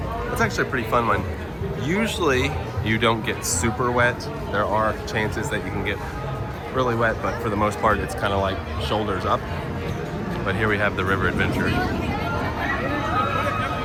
It's actually a pretty fun one. Usually, you don't get super wet. There are chances that you can get really wet, but for the most part, it's kind of like shoulders up. But here we have the river adventure.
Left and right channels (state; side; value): identical; both; correlation 1.00